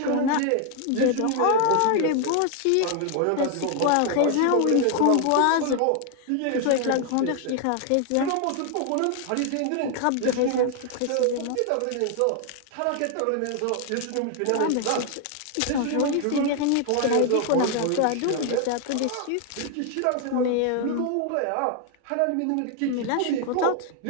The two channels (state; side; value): different; both; correlation 0.00